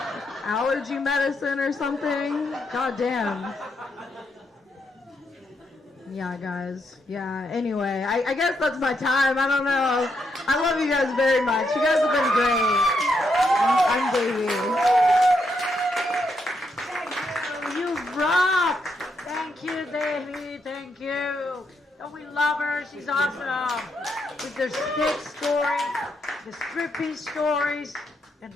allergy medicine or something? God damn. Yeah, guys. Yeah, anyway, I guess that's my time. I don't know. I love you guys very much. You guys have been great. I'm Davey. You rock! Thank you, Davey. Thank you. Oh, we love her. She's awesome. With the stick stories, the stripping stories, and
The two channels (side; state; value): both; normal; correlation 0.79